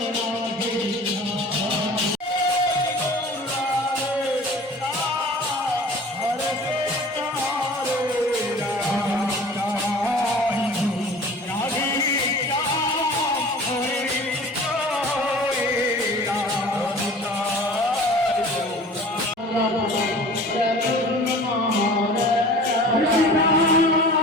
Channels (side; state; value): both; normal; correlation 0.43